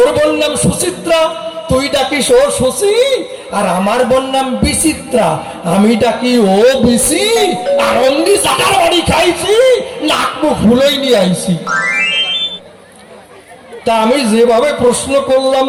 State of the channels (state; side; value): identical; both; correlation 1.00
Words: বোন নাম সুচিত্রা, তুই ডাকিস ও সুশী। আর আমার বোন নাম বিচিত্রা, আমি ডাকি ও বিচি। আর অমনি জাটার বাড়ি খাইছি, নাক মুখ ফুলোই নিয়ে আইছি। তা আমি যেভাবে প্রশ্ন করলাম